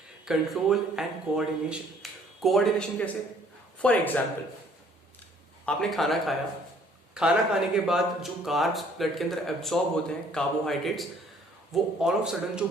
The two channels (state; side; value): normal; both; correlation 0.59